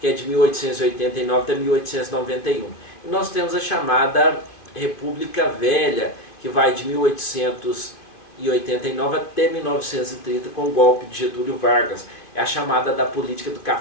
é de 1889 até 1891. E nós temos a chamada República Velha, que vai de 1889 até 1930, com o golpe de Getúlio Vargas. É a chamada da política do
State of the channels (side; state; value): right; late; 2.5 ms